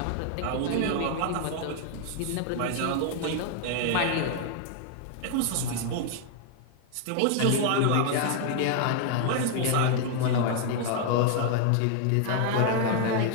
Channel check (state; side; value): different; both; correlation 0.00